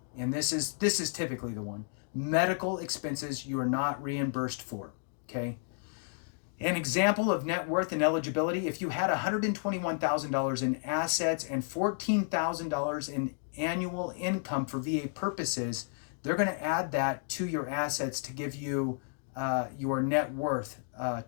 and this is typically the one. Medical expenses you are not reimbursed for. Okay. An example of net worth and eligibility: if you had $121,000 in assets and $14,000 in annual income for VA purposes, they're going to add that to your assets to give you your net worth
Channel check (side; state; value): right; silent; 56 dB below the other